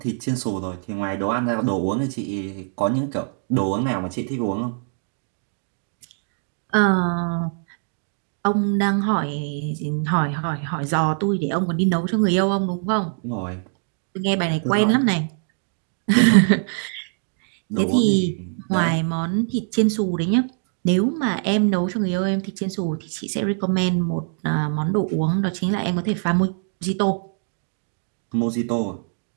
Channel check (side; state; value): left; silent; digital silence